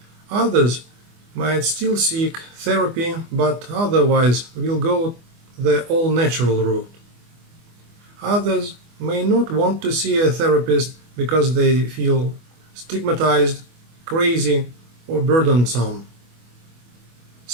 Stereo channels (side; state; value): left; late; 24 ms